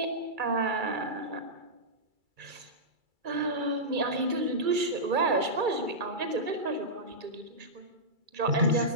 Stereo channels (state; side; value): late; left; 2.3 ms